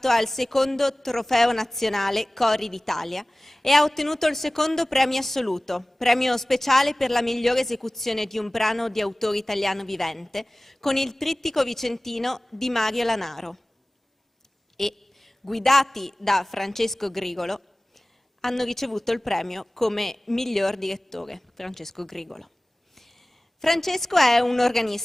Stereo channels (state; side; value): normal; both; correlation 0.98